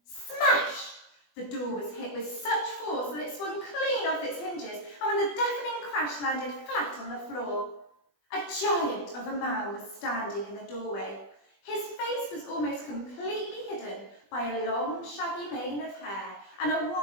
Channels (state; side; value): late; right; 20 ms